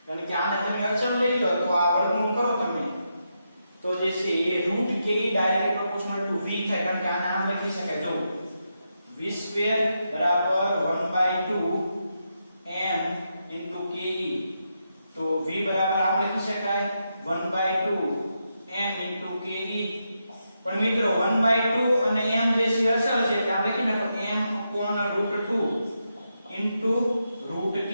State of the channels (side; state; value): both; inverted; correlation -0.84